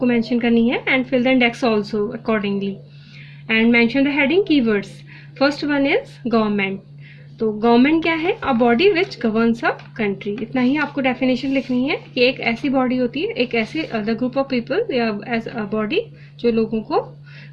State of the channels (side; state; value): both; identical; correlation 1.00